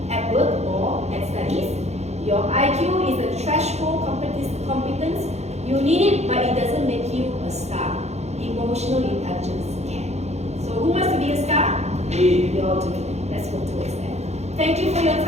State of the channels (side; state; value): left; late; 0.32 ms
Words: at work or at studies. Your IQ is a threshold competence. You need it, but it doesn't make you a star. Emotional intelligence can. So who wants to be a star? Me. We all do. Let's work towards that. Thank you for your